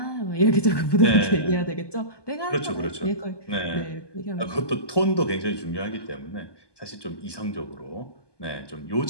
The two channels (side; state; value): right; late; 1.2 ms